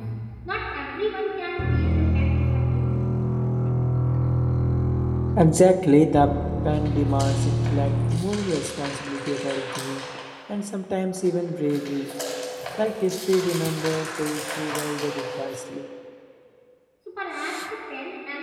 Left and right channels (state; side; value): identical; both; correlation 1.00